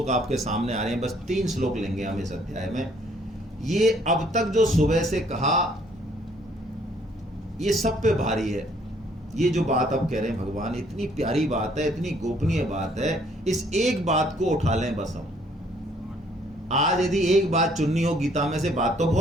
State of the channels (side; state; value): both; normal; correlation 0.63